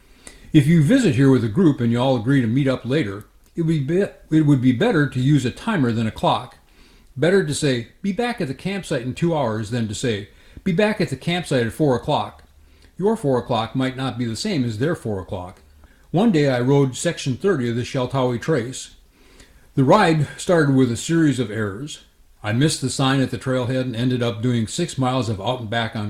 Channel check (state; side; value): identical; both; correlation 1.00